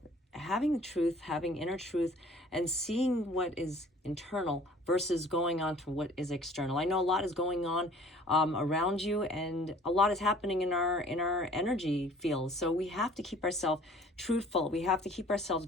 Having the truth, having inner truth, and seeing what is internal versus going on to what is external. I know a lot is going on around you, and a lot is happening in our energy field. So we have to keep ourselves truthful. We have to keep ourselves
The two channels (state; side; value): normal; both; correlation 0.51